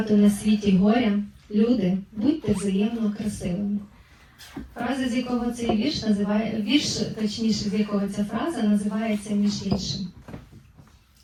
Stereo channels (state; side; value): identical; both; correlation 1.00